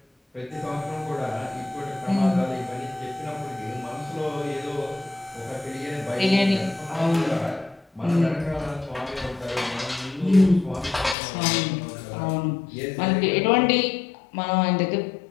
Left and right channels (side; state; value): right; drops out; at 11.2 s